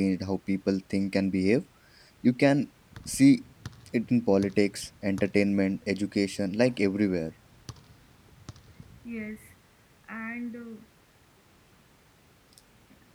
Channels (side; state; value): both; identical; correlation 1.00